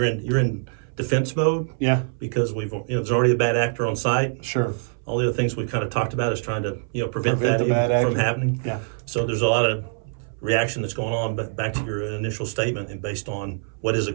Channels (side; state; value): left; silent; 63 dB below the other